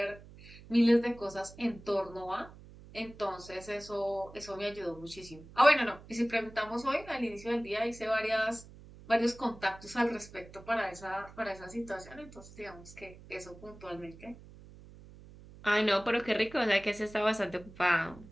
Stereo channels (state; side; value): noise; right; hum, 19 dB below the sound